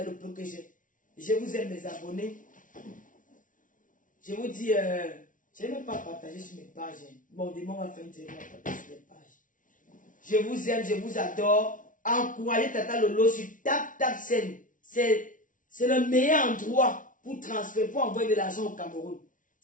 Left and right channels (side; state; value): right; late; 0.38 ms